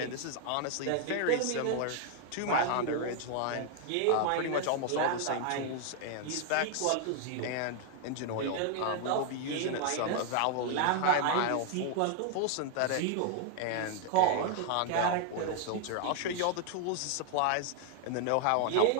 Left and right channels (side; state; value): both; different; correlation 0.00